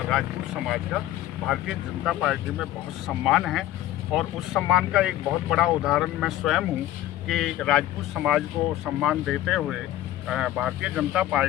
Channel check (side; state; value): right; quieter; 14.0 dB